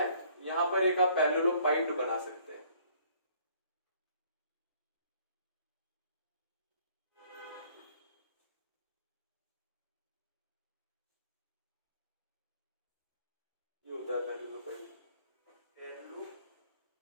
यहां पर एक आप पैरेललोपाइड बना सकते हैं, ये होता है पैरेललोपाइड,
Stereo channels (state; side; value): inverted; both; correlation -0.60